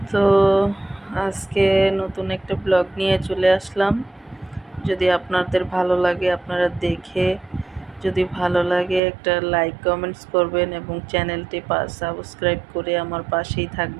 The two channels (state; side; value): drops out; left; at 9.0 s